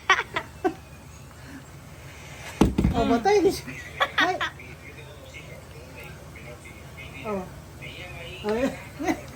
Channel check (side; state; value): both; identical; correlation 1.00